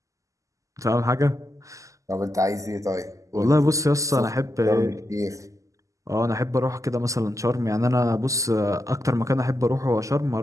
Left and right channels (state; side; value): late; left; 0.16 ms